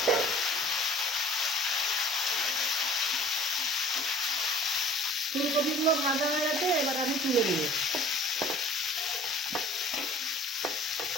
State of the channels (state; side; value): normal; both; correlation 0.48